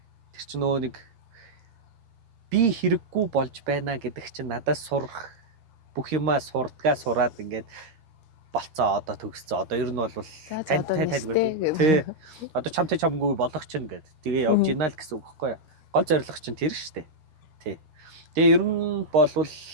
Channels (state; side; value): late; left; 13 ms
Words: Тэр чинь нөгөө нэг би хэрэггүй болж байна гэдэг чинь надаас сурах бүх юмаа сураад ингээд болцоо одоо төгсцөө. Одоо ер нь бол тань гэдэг тий. Одоо чамгүй болох чинь гэд. Тэгээ явж гинэ л гэсэн үг байхгүй юу. Гол зорилго чинь тэр шүү дээ. Тий. Тэгээ ер нь болвол